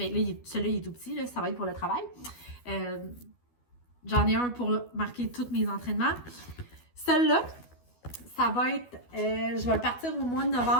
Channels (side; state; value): right; late; 12 ms